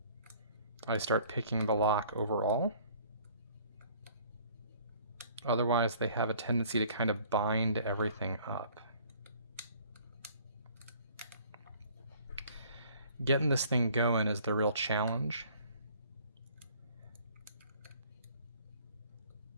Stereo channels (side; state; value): both; inverted; correlation -0.54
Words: I start picking the lock overall. Otherwise, they have a tendency to kind of bind everything up. Getting this thing going is the real challenge.